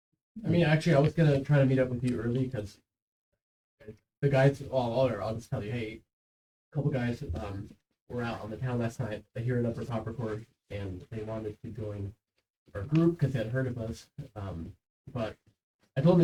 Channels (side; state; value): both; identical; correlation 1.00